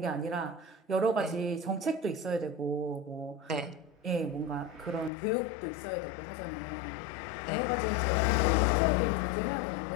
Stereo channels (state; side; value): drops out; right; at 5.1 s